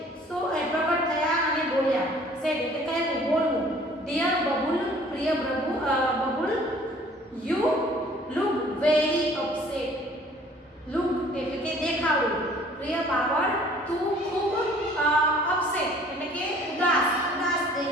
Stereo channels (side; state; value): both; normal; correlation 0.53